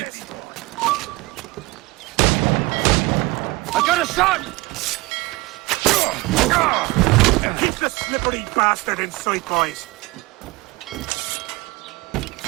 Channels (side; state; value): left; quieter; 22.5 dB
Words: I got a shot! Keep the slippery bastard in sight, boys!